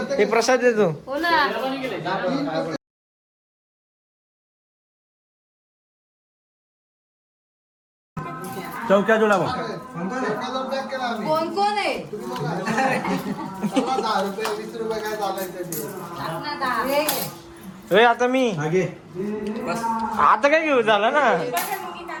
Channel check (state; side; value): identical; both; correlation 1.00